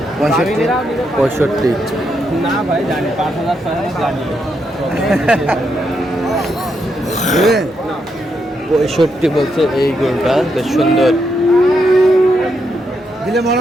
65। না ভাই, জানি 5,000 জানি। 65 বলছে এই গরুটা, বেশ সুন্দর। দিলে মনে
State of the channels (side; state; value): both; normal; correlation 0.80